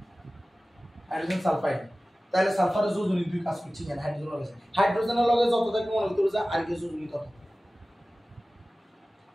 হাইড্রোজেন সালফাইড তাহলে সালফারের যোজনী দুই কাজ করছে কেন হাইড্রোজেনের লগে যত থাকে মনে হতে যে আর কি যোজনী তত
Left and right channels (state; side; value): normal; both; correlation 0.97